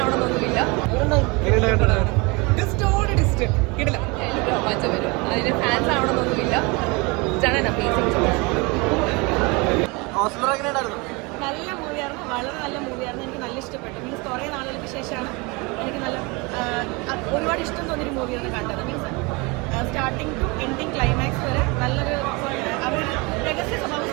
മാറ്റം വരും. അതിന് ഫാൻസ് ആവണമെന്നൊന്നുമില്ല. നല്ല മൂവിയായിരുന്നു, വളരെ നല്ല മൂവിയായിരുന്നു. എനിക്ക് നല്ല ഇഷ്ടപ്പെട്ടു. മീൻസ് കുറേ നാളുകൾക്ക് ശേഷമാണ് എനിക്ക് നല്ല ഒരുപാട് ഇഷ്ടം തോന്നിയൊരു മൂവിയാണ് കണ്ടത്. Means starting to ending climax വരെ നല്ലൊരു അവർ രഹസ്യ സ്വഭാവം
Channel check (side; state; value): left; quieter; 27.2 dB